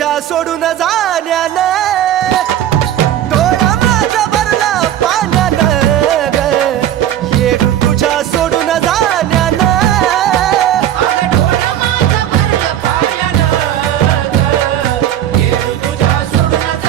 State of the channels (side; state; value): left; quieter; 11.4 dB